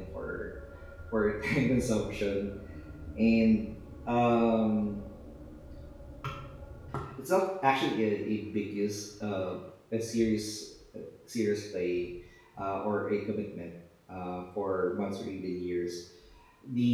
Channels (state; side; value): identical; both; correlation 1.00